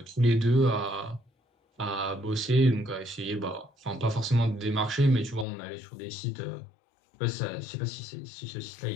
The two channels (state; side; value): drops out; right; at 5.5 s